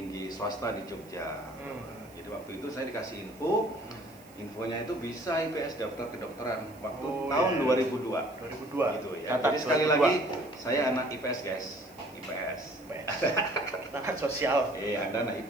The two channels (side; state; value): right; noise; hiss, 25 dB below the sound